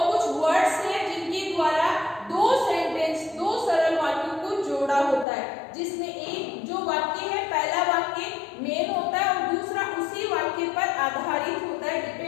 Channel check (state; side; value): drops out; right; at 5.2 s